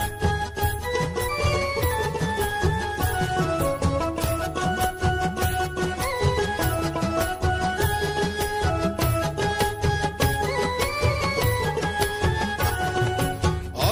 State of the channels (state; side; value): identical; both; correlation 1.00